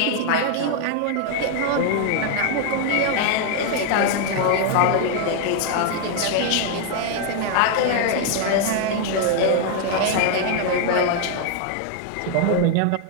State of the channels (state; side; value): different; both; correlation 0.00